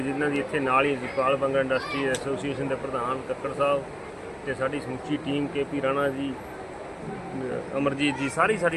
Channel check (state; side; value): identical; both; correlation 1.00